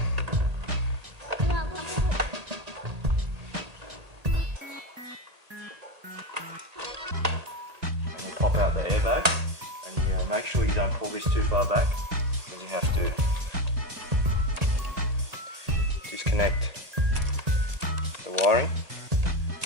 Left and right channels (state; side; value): late; left; 1.8 ms